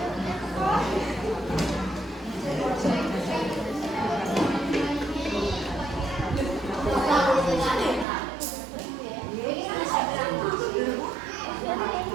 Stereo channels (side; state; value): left; drops out; at 8.1 s